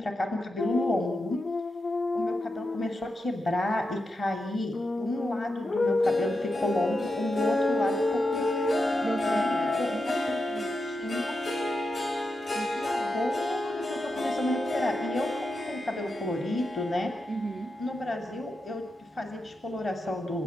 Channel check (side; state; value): both; normal; correlation 0.88